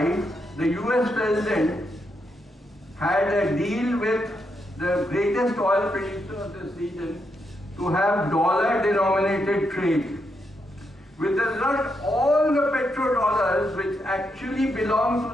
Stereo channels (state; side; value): normal; both; correlation 0.81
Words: the US president had a deal with the greatest oil producer of this region to have dollar-denominated trade. With the result, all the petrodollars, which actually belong to